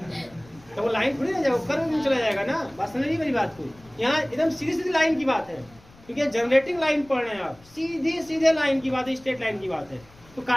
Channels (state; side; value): noise; left; rumble, 26 dB below the sound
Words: थोड़ी ना जाएगा, कर्व में चला जाएगा ना। बात समझ नहीं मेरी बात को, यहाँ एकदम सीधी सीधी लाइन की बात है, क्योंकि जनरेटिंग लाइन पढ़ रहे हैं आप, सीधे सीधे लाइन की बात है, स्ट्रेट लाइन की बात है, तो